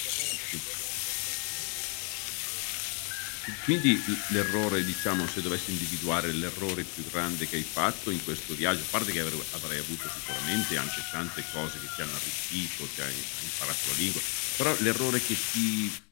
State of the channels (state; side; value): quieter; right; 37.4 dB